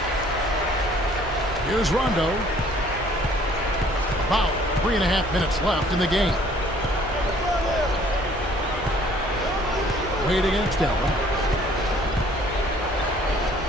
Here's Rondo. About 3.5 minutes left in the game. Wade against Allen.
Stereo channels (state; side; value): normal; both; correlation 0.58